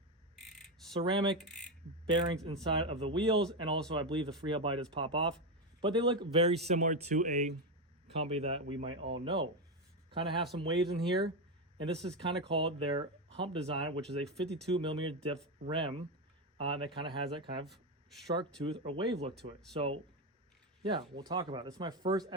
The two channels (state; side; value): normal; both; correlation 0.11